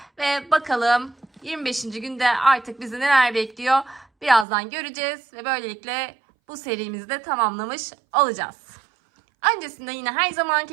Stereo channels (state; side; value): drops out; left; at 4.5 s